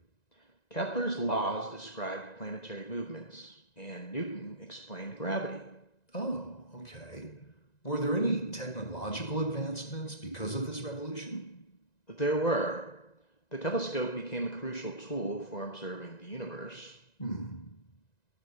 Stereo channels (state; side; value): late; right; 1.9 ms